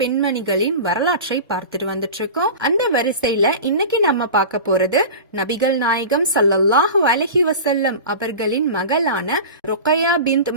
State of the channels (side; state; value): both; inverted; correlation -0.32